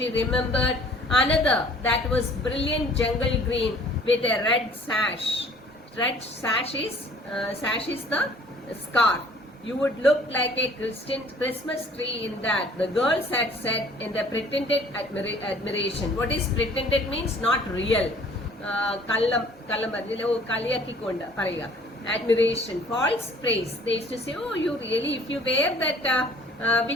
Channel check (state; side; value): normal; both; correlation 0.53